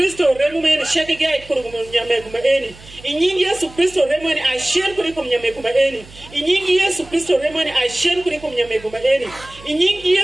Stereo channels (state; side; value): noise; right; hum, 20 dB below the sound